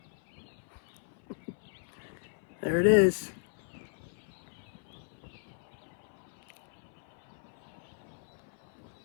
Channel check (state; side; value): silent; right; 54 dB below the other